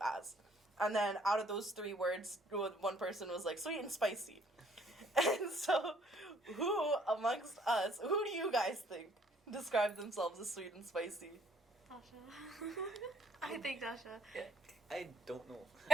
as. And then out of those 3 words, one person was like sweet and spicy. And so who amongst us, who do you guys think describe themselves as sweet and spicy? Dasha. I think Dasha. I don't know.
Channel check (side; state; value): both; normal; correlation 0.61